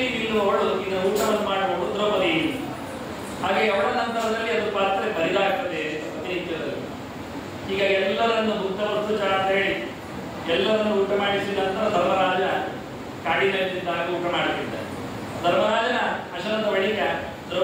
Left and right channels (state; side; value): identical; both; correlation 1.00